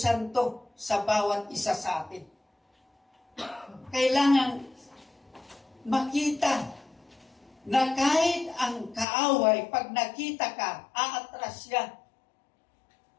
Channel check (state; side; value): drops out; right; at 9.1 s